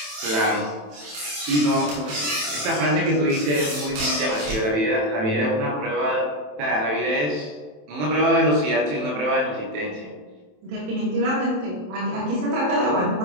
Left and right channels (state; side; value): late; left; 27 ms